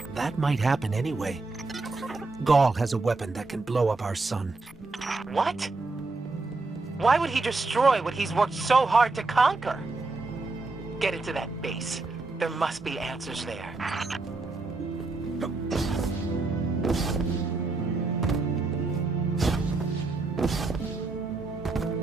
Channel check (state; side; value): quieter; left; 3.6 dB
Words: That might happen anyway. Gaul has a weapon that can blow up our sun. What? Why would he destroy what he's worked so hard to conquer? Get into that base. There must be answers there.